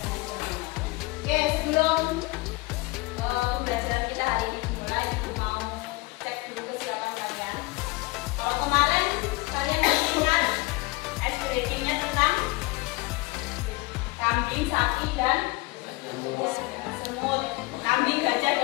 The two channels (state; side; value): quieter; right; 23.2 dB